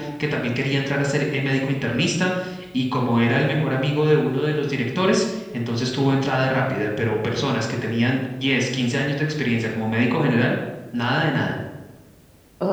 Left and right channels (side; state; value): both; identical; correlation 1.00